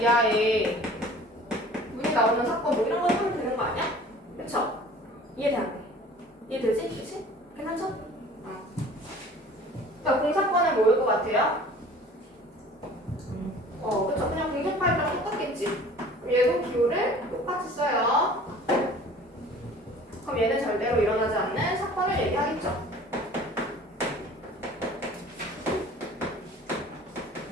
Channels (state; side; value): normal; both; correlation 0.46